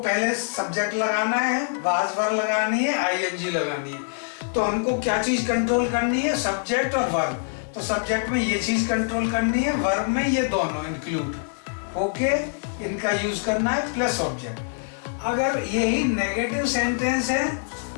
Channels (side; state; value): right; silent; digital silence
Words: सब्जेक्ट लगाना है, वाज वर्ब लगानी है, आईएनजी लगानी है। तो हमको क्या चीज कंट्रोल करनी है? सब्जेक्ट और वर्ब। तो सब्जेक्ट में ये चीज कंट्रोल करनी है, वर्ब में ये दोनों इंक्लूड ओके, इनका यूज करना है, प्लस ऑब्जेक्ट। अगर यही नेगेटिव सेंटेंस है